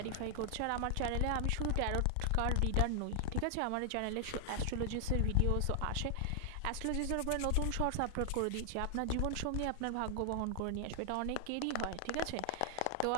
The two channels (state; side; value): different; both; correlation 0.00